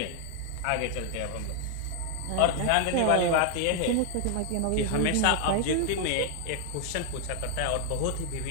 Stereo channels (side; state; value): both; different; correlation 0.00